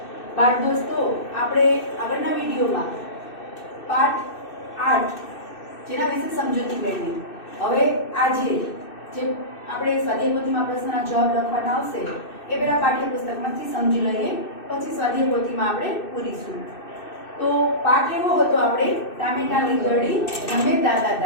बाळ दोस्तों आपणे आगळना विडियो में पाठ 8 जेना विषे समजूती मेळवी। हवे आजे जे आपणे स्वाध्याय पोथीमां प्रश्नना जवाब लखवाना आवशे ए पेला पाठ्यपुस्तकमांथी समजी लईए, पछी स्वाध्याय पोथीमां आपणे पूरीशुं। तो पाठ एवो हतो आपणे टामेटा लींगड़ी रमे दादा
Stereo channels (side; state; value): right; late; 2.6 ms